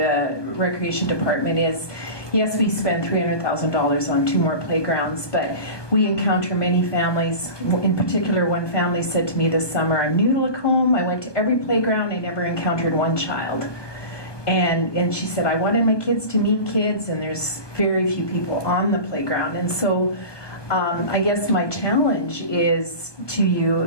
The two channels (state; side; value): late; right; 1.2 ms